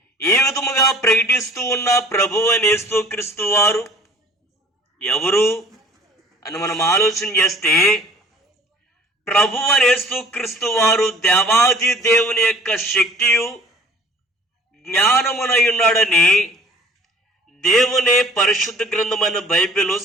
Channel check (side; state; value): both; normal; correlation 0.49